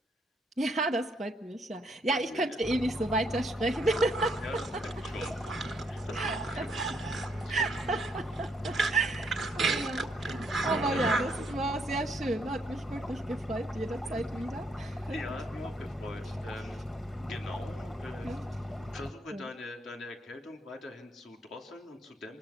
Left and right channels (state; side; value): normal; both; correlation 0.72